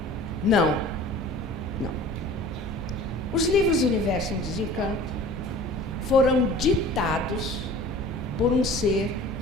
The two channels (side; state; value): both; normal; correlation 0.44